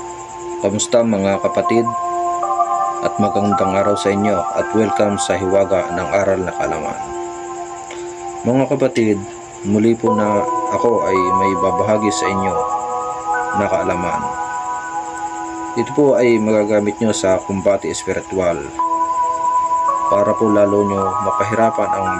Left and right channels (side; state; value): both; identical; correlation 1.00